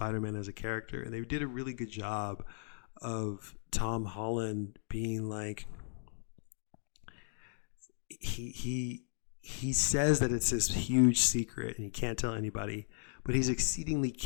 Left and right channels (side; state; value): right; silent; digital silence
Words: as a character. And they did a really good job of Tom Holland being like, he says that it's this huge secret and he can't tell anybody, but he's exceedingly